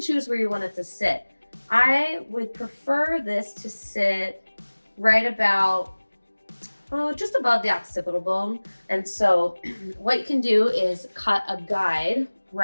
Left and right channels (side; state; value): both; inverted; correlation -1.00